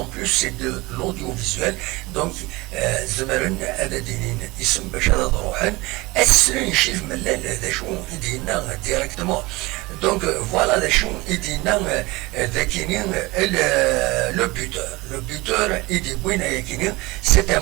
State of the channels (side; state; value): left; quieter; 22.3 dB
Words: بلوس سي دو لوديو دونك زمرن هذا دينين اسم باش هذا روحن أسرين شيف ملال ذا شو يدينا ديريكتمون دونك فوالا ذا شو يدينا ذاكينين لو بوتور يدي بوين يكينين سي ان